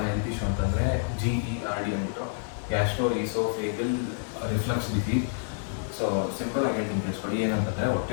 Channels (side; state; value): right; silent; 59 dB below the other